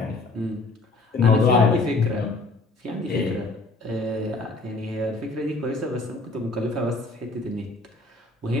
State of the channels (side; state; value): right; quieter; 3.2 dB